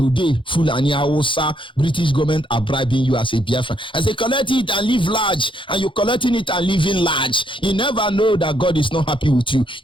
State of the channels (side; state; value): right; late; 0.25 ms